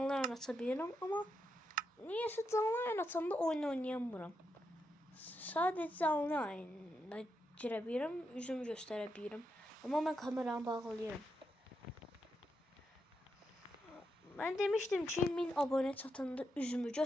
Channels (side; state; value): both; normal; correlation 0.83